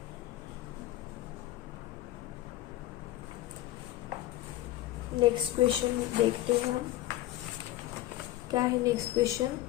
नेक्स्ट क्वेश्चन देखते हैं हम, क्या है next question.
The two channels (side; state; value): right; quieter; 15.1 dB